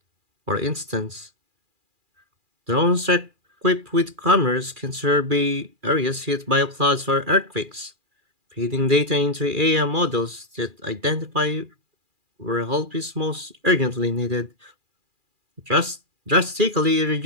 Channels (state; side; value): late; left; 2.4 ms